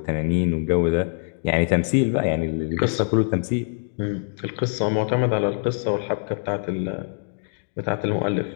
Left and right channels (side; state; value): right; silent; digital silence